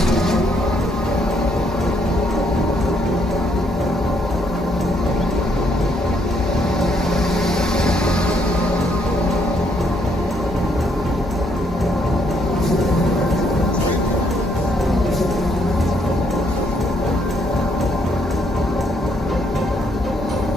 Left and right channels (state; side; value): normal; both; correlation 0.71